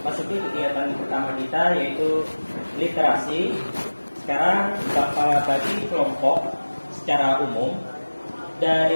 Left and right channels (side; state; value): both; inverted; correlation -1.00